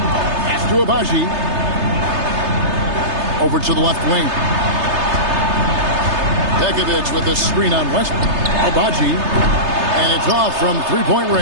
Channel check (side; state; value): left; late; 3.3 ms